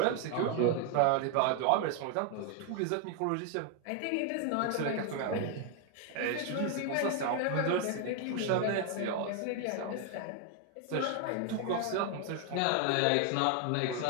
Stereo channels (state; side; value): different; both; correlation 0.01